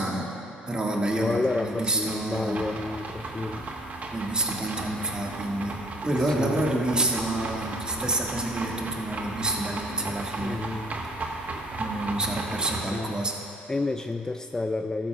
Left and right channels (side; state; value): both; normal; correlation 0.59